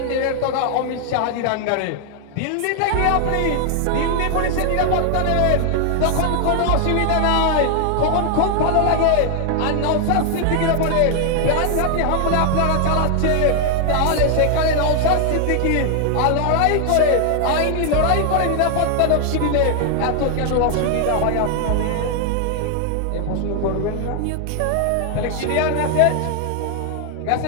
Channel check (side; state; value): both; different; correlation 0.00